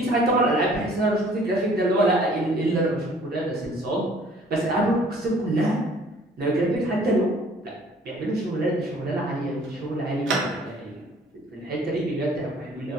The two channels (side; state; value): both; normal; correlation 0.55